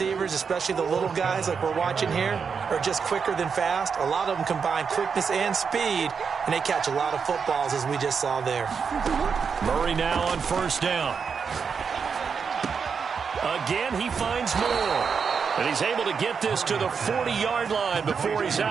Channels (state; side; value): quieter; left; 6.0 dB